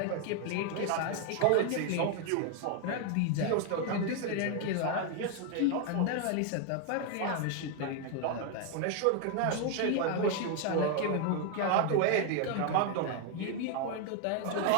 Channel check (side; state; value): both; different; correlation 0.01